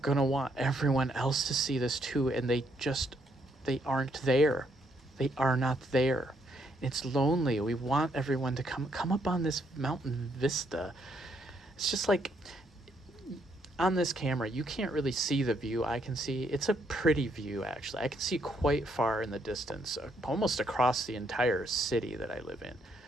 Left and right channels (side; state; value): both; normal; correlation 0.73